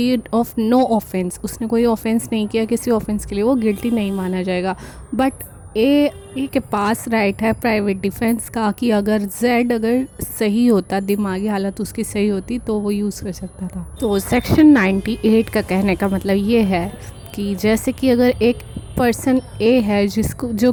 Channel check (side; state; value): both; identical; correlation 1.00